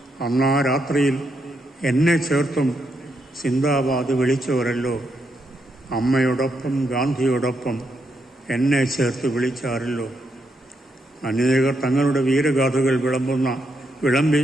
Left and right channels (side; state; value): both; normal; correlation 0.80